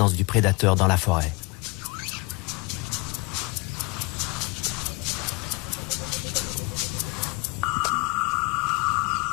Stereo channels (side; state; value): right; quieter; 26.9 dB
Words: du prédateur dans la forêt.